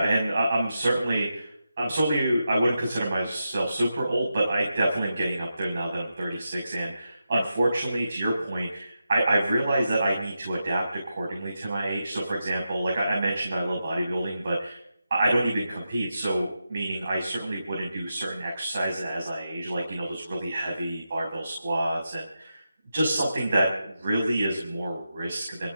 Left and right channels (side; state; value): both; inverted; correlation -0.88